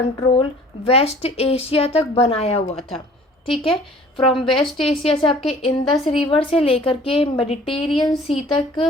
वेस्ट एशिया तक बनाया हुआ था। ठीक है, फ्रॉम वेस्ट एशिया से आपके इंडस रिवर से लेकर के मेडिटेरियन सी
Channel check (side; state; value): both; normal; correlation 0.51